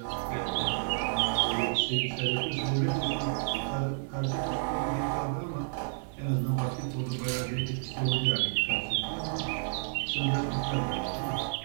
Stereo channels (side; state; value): left; silent; digital silence